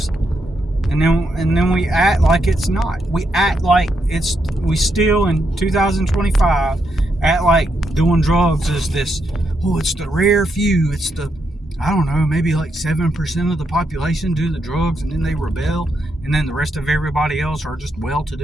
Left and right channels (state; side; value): normal; both; correlation 0.80